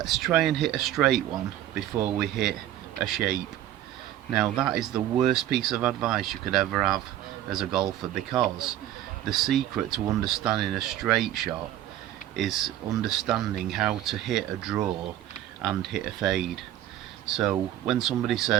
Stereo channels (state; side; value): quieter; left; 12.7 dB